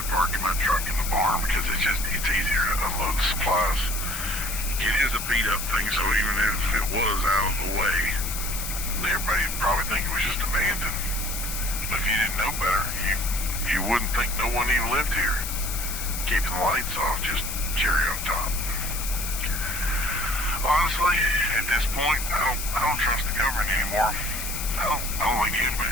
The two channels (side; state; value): left; noise; hiss, 5 dB below the sound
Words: parking my truck in the barn because it's easier to unload the supplies. It is a beat up thing, so even if it was out of the way, everybody would probably think it was just abandoned. But if you didn't know better, you wouldn't think no one even lived here. Keeping the lights off, just cherry on top. Honestly, at this point, I don't trust the government anymore. I don't think